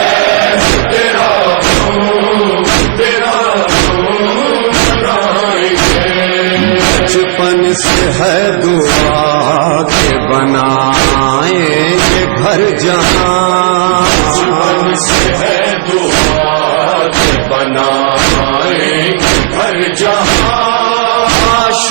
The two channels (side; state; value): left; silent; digital silence